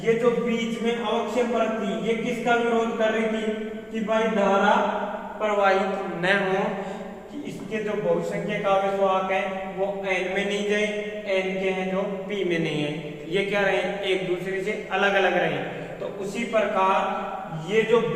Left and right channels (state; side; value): identical; both; correlation 1.00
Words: ये जो बीच में अवक्षय परत थी, ये किसका विरोध कर रही थी? कि भाई धारा प्रवाहित न हो, कि इसके जो बहुसंख्यक आवेशवाहक है वो एन में नहीं जाए, एन के हैं जो पी में नहीं है, ये क्या रहे? एक दूसरे से अलग अलग रहे। तो उसी प्रकार ये जो